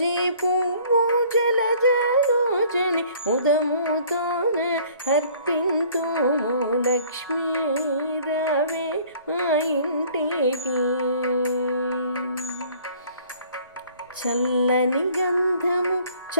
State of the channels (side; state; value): both; inverted; correlation -0.54